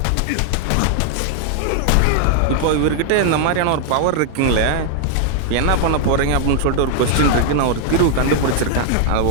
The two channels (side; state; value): both; different; correlation 0.00